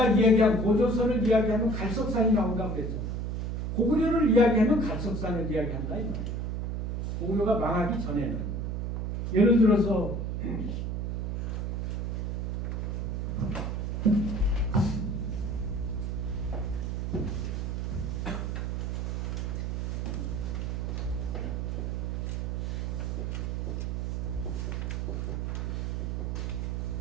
이야기한 고조선을 이야기하면 갈석산이 나온다고 그랬잖아. 고구려를 이야기하면 갈석산을 이야기한다 이 말이야. 고구려가 망하기 전에는 예를 들어서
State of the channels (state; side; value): noise; right; hum, 1 dB below the sound